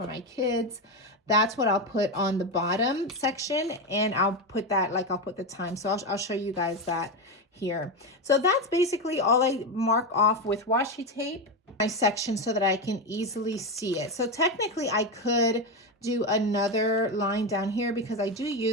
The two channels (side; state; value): both; normal; correlation 0.13